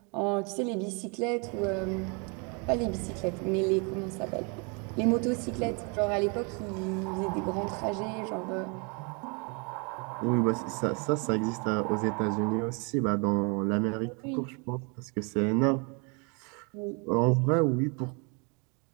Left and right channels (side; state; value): left; quieter; 33.4 dB